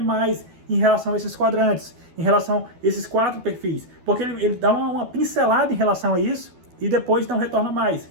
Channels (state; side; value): late; left; 12 ms